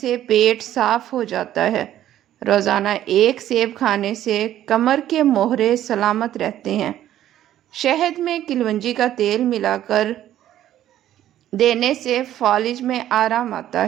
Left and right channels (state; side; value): quieter; left; 12.2 dB